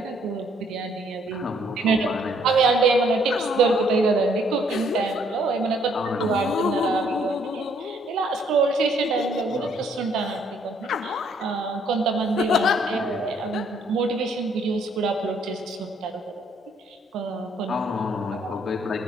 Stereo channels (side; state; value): both; normal; correlation 0.66